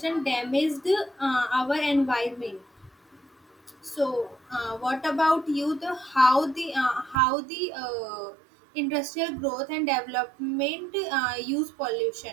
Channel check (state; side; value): drops out; left; at 7.2 s